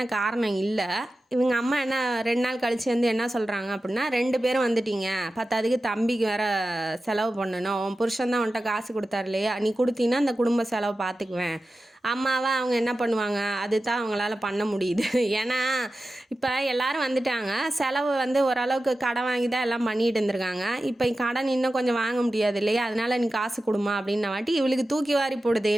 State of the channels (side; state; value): both; normal; correlation 0.93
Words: காரணம் இல்லை. இவங்க அம்மா என்ன 2 நாள் கழிச்சு வந்து என்ன சொல்கிறாங்க அப்படின்னா, 2 பேரும் வந்துட்டீங்க, பத்தாதுக்கு தம்பிக்கு வேறு செலவு பண்ணணும், உன் புருஷன் தான் உன்கிட்ட காசு கொடுத்தாரு இல்லையா, நீ கொடுத்தீங்கன்னா அந்த குடும்ப செலவு பார்த்துக்குவேன் அம்மாவை அவங்க என்ன பண்ணுவாங்க, அதுதான் அவங்களால பண்ண முடியுது. ஏன்னா இப்போ எல்லாரும் வந்துட்டாங்க, செலவு வந்து ஓரளவுக்கு கடன் வாங்கி தான் எல்லாம் பண்ணிட்டு இருந்திருக்காங்க. இப்போ கடன் இன்னும் கொஞ்சம் வாங்க முடியாது இல்லையா, அதனால நீ காசு கொடுமா அப்படின்ன வாட்டி இவளுக்கு தூக்கி வாரி போடுது.